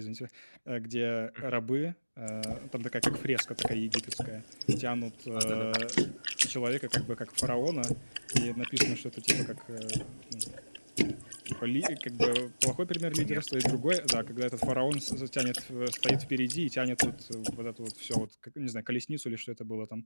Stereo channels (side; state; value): both; inverted; correlation -1.00